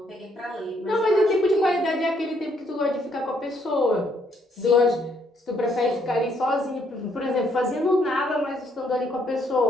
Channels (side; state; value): both; normal; correlation 0.70